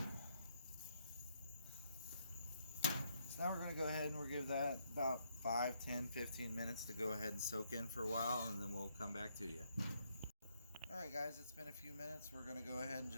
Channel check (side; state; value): both; inverted; correlation -0.75